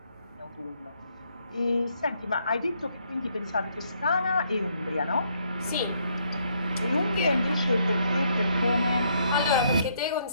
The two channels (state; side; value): inverted; both; correlation -0.71